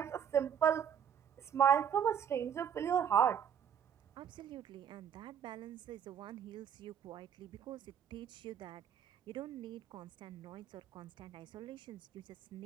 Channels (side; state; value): left; quieter; 8.4 dB